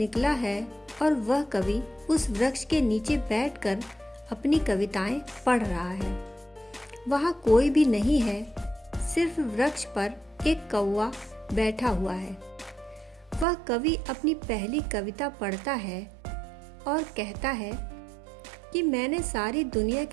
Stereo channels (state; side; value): drops out; left; at 13.5 s